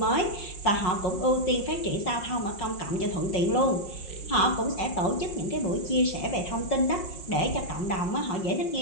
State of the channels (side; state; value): right; late; 5.4 ms